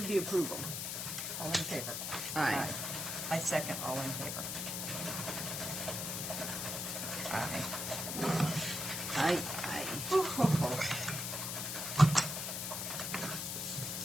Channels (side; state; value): left; noise; hiss, 3 dB below the sound